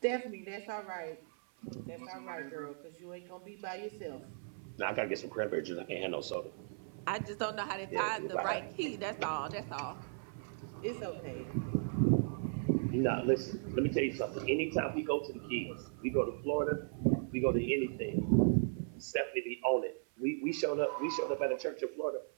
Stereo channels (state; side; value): silent; left; 53 dB below the other